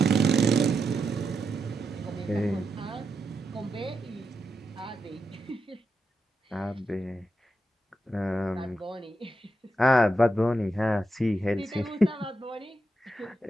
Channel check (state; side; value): normal; both; correlation 0.86